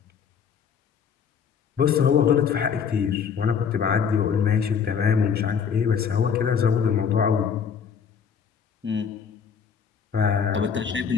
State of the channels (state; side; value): quieter; right; 6.8 dB